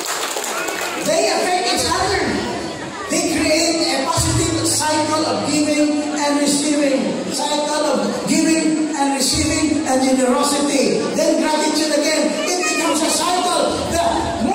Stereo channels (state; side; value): identical; both; correlation 1.00